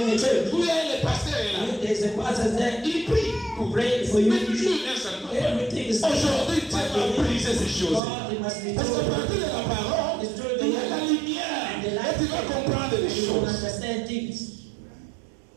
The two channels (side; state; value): left; drops out; at 8.0 s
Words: the church. Où il y a le pasteur est là. There's a pastor there. Il prie. Who pray for you. Mais toujours un seul point. Everything is Aujourd'hui, Dieu va briser ces choses. God, it must be Parce qu'à told. partir de la parole, il y a la lumière. Et tu vas comprendre les You will choses. understand things.